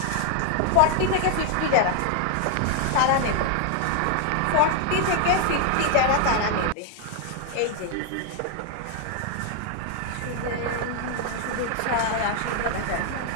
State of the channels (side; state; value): both; different; correlation 0.00